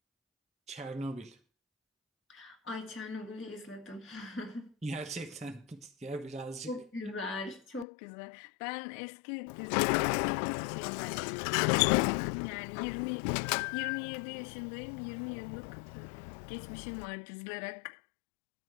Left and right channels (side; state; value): right; drops out; at 7.9 s